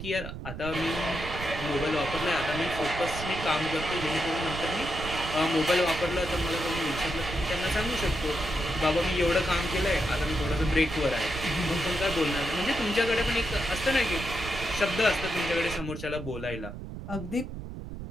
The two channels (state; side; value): noise; right; rumble, 9 dB below the sound